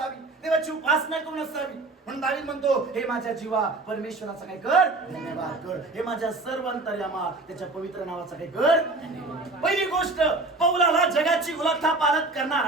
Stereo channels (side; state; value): left; quieter; 3.3 dB